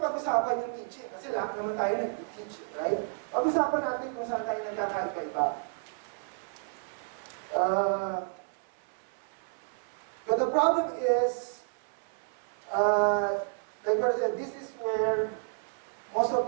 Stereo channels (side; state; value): left; silent; 57 dB below the other